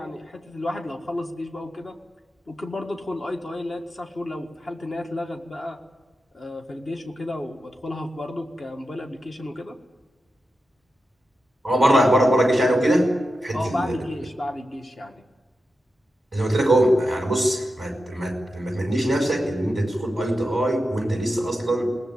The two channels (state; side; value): normal; both; correlation 0.90